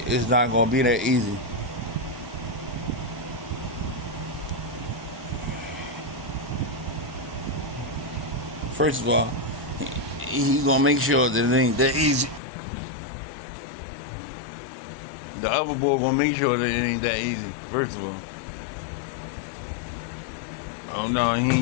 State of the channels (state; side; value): drops out; right; at 12.4 s